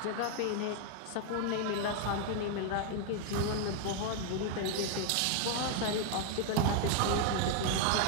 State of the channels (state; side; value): different; both; correlation 0.00